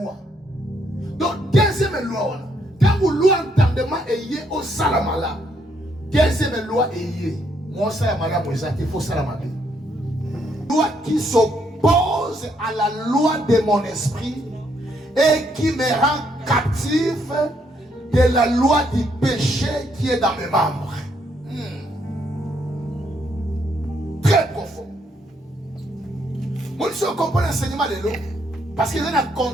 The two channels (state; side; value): normal; both; correlation 0.73